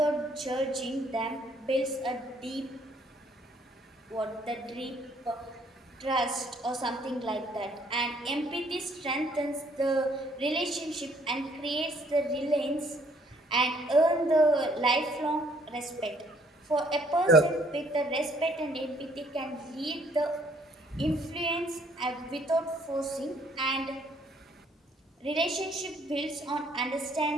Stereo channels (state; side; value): normal; both; correlation 0.64